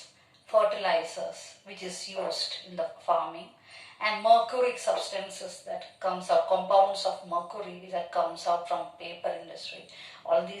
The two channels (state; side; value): identical; both; correlation 1.00